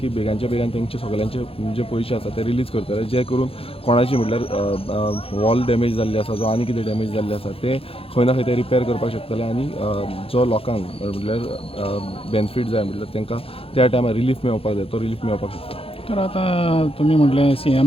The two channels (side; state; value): right; late; 0.27 ms